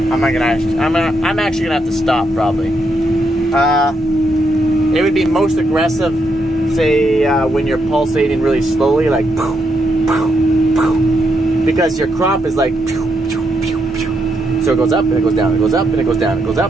actually going to have to stop probably. It would be most aggressive, say, when you're pulsating really slowly, like, because your crop is like, so it goes up and it goes down, it goes up and it goes down, it goes up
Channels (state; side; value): normal; both; correlation 0.79